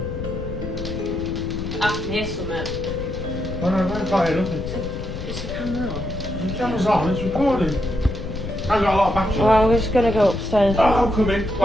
I can hear something. I don't know, I can't hear nothing. Is the camera on? The camera's on, it's recording. I've got a lot of battery. Well, we're just going to go upstairs. Oh, I'm coming.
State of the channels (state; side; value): noise; left; rumble, 7 dB below the sound